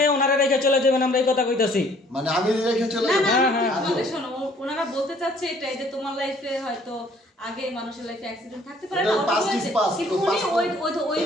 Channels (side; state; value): both; normal; correlation 0.59